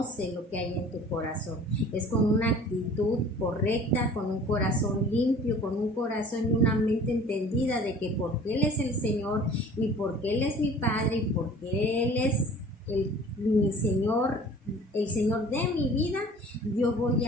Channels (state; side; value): normal; both; correlation 0.47